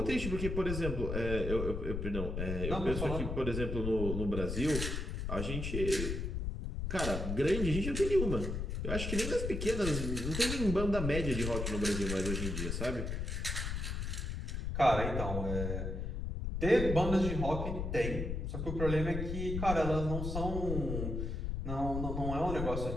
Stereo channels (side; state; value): left; noise; rumble, 3 dB below the sound